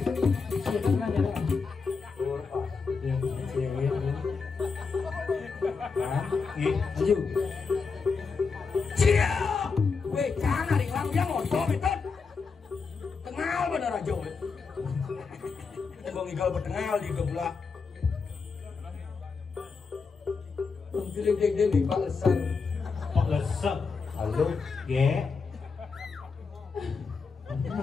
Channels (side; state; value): right; quieter; 4.9 dB